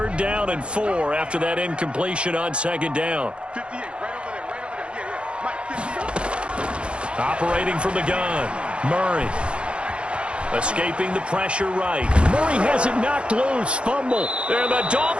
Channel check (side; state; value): left; late; 0.058 ms